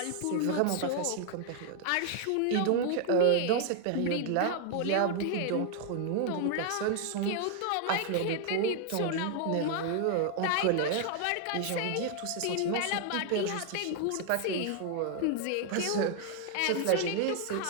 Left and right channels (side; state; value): both; different; correlation 0.00